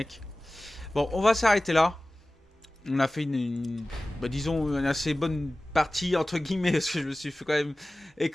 Bon, on va s'arrêter là. On a fait bah, disons, une assez bonne partie, entre guillemets, parce que je me suis fait quand même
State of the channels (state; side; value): normal; both; correlation 0.97